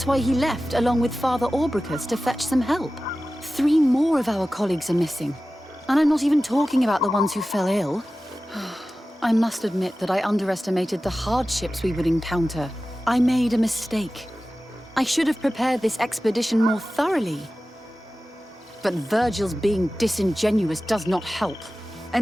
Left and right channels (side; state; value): both; normal; correlation 0.95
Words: why he left along with Father Orbricus to fetch some help. 3 more of our colleagues are missing. And I'm not even talking about the ones who fell ill. I must admit that I underestimated the hardships we would encounter. I made a mistake. I should have prepared this expedition more thoroughly. But Virgil's being disingenuous does not help.